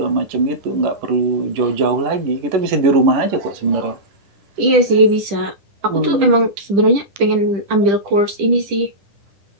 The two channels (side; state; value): left; late; 10 ms